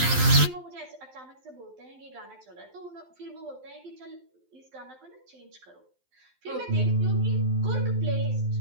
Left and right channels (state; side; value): late; left; 12 ms